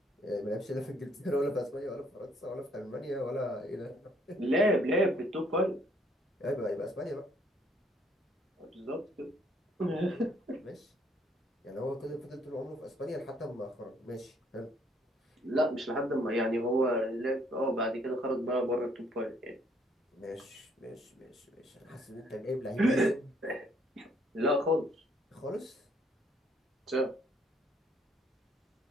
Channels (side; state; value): both; normal; correlation 0.66